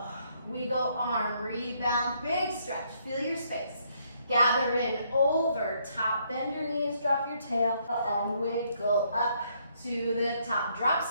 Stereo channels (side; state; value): both; inverted; correlation -0.71